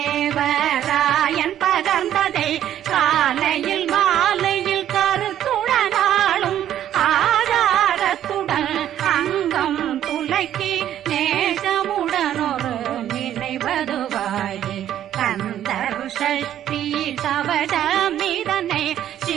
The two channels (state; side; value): quieter; left; 11.1 dB